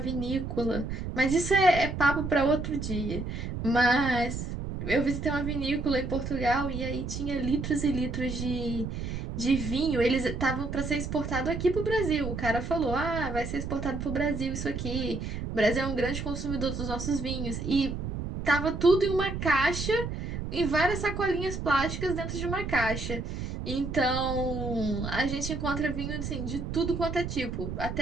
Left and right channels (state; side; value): noise; right; rumble, 5 dB below the sound